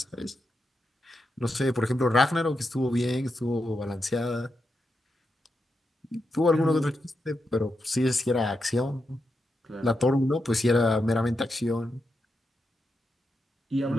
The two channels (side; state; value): both; normal; correlation 0.86